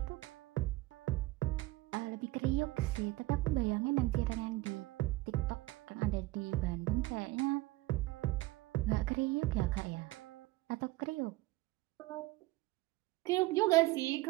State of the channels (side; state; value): left; quieter; 19.5 dB